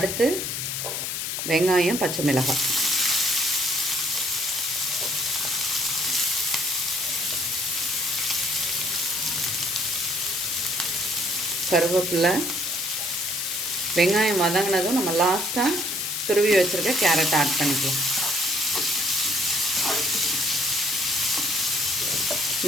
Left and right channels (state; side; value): noise; left; hiss, 3 dB below the sound